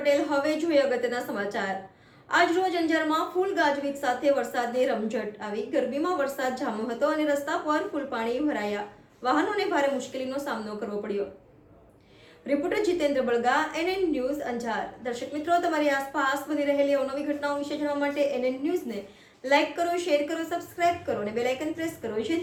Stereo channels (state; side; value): identical; both; correlation 1.00